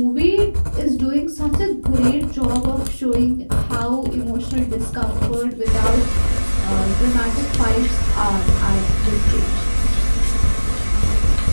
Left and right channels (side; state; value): both; inverted; correlation -1.00